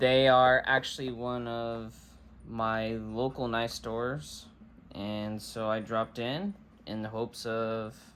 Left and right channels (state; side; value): identical; both; correlation 1.00